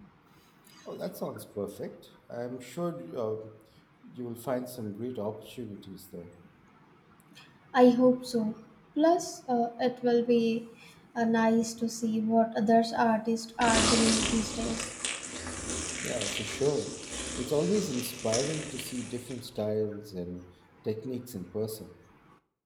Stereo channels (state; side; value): identical; both; correlation 1.00